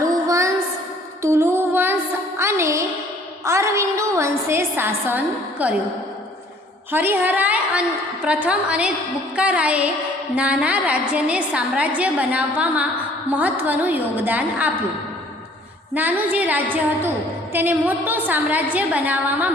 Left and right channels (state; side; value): normal; both; correlation 0.56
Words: વંશ, તુલુ વંશ અને અરવિંદુ વંશે શાસન કર્યું। હરિહરાય પ્રથમ અને બુક્કારાયે નાના રાજ્યને સામ્રાજ્ય બનાવવામાં મહત્ત્વનું યોગદાન આપ્યું। નાનું જે રાજ્ય હતું તેને મોટું સામ્રાજ્ય બનાવવામાં